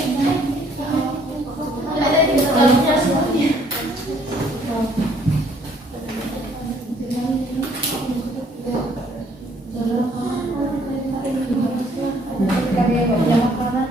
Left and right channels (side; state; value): both; normal; correlation 0.63